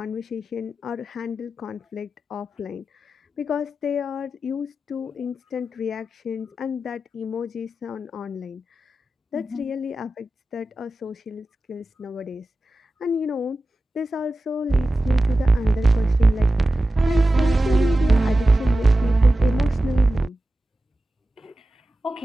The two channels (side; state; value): both; normal; correlation 0.94